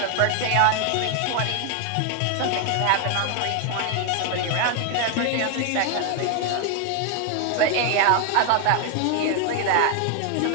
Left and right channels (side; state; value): both; different; correlation 0.01